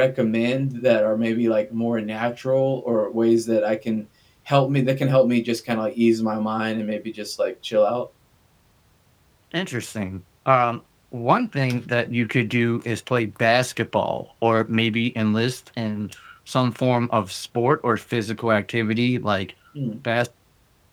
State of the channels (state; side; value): identical; both; correlation 1.00